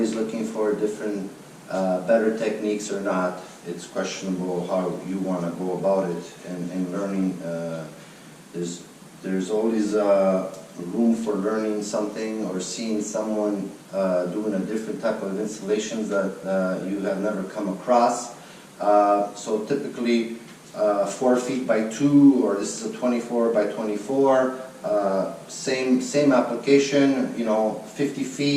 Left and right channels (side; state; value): both; identical; correlation 1.00